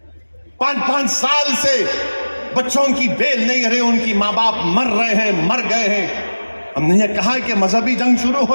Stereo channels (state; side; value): inverted; both; correlation -1.00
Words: 5-5 साल से बच्चों की बेल नहीं रही, उनकी माँ बाप मर रहे हैं, मर गए हैं, हमने ये कहा कि मजहबी जंग शुरू